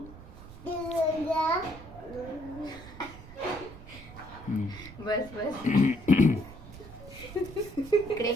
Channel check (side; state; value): right; noise; rumble, 16 dB below the sound